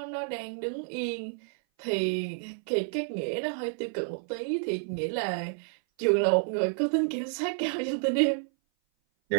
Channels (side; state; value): left; silent; 57 dB below the other